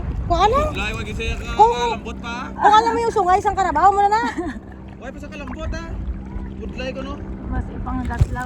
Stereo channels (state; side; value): identical; both; correlation 1.00